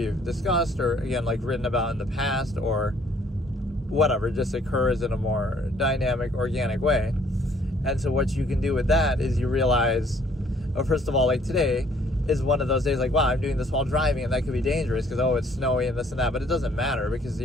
discussed, or again, like written about in the past, or whatever, just occurs in a more dynamic, organic way. And so what you can do with that is you realize, first of all, like today is one of those days like, wow, I'm doing this while driving, and that could be dangerous because, oh, it's snowy and this and that, but it doesn't matter, because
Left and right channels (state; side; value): normal; both; correlation 0.61